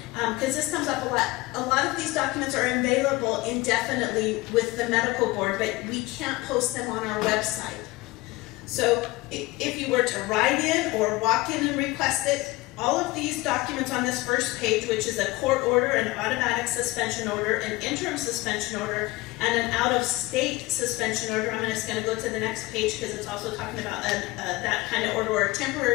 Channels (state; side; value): quieter; right; 20.8 dB